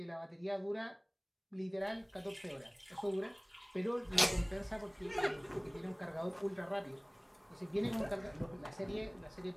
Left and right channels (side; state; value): both; identical; correlation 1.00